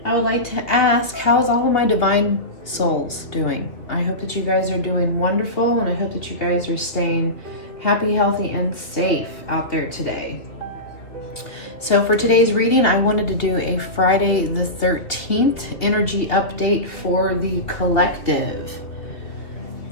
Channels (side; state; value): right; late; 2.8 ms